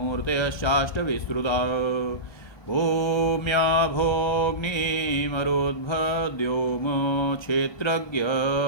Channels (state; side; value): late; right; 1.2 ms